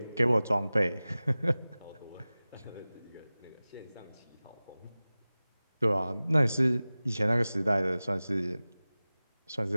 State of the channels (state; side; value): inverted; both; correlation -0.98